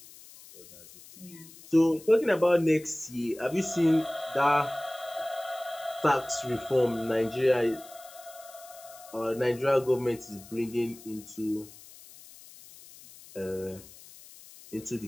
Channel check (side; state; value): left; noise; hiss, 20 dB below the sound